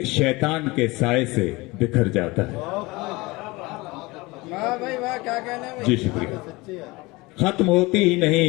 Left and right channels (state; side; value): quieter; right; 22.9 dB